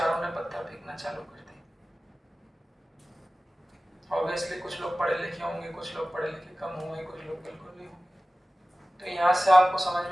ने पत्थर फेंकना चालू कर दिया। ऑब्वियसली कुछ लोग पढ़े लिखे होंगे, कुछ लोग पढ़े लिखे कम होंगे, कुछ लोग बिल्कुल नहीं होंगे। तो यहाँ से आपको समझ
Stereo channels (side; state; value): both; normal; correlation 0.97